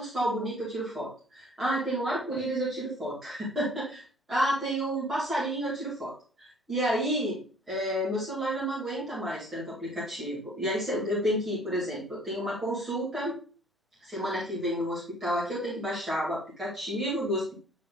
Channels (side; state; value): both; normal; correlation 0.55